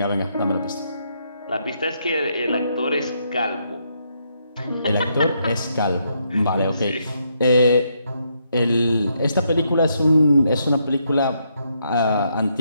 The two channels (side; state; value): both; inverted; correlation -0.76